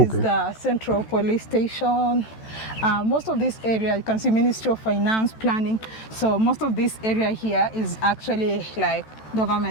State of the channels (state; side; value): late; right; 14 ms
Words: the Central Police Station. Most of this area, you can see Ministry of Finance, Planning. So most of this area here is actually like